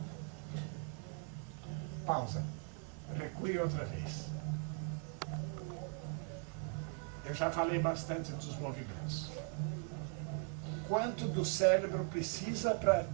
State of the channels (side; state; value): left; quieter; 38.6 dB